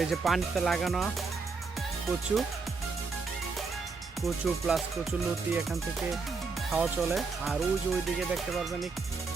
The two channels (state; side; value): quieter; left; 4.5 dB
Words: এই যে পানিতে লাগানো কচু কচু প্লাস কচু লতি এখান থেকে খাওয়া চলে। আর ওই যে ওইদিকে দেখতে পারবেন